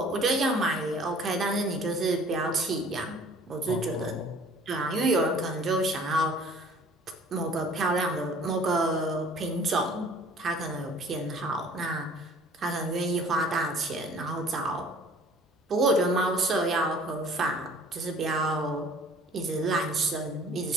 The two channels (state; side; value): normal; both; correlation 0.51